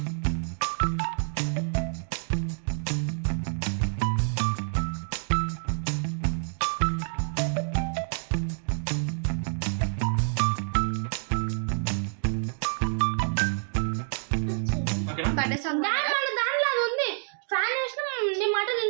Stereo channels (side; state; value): left; silent; 59 dB below the other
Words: దాంట్లో అది ఉంది. ఫ్యాన్ వేసిన నీ మాట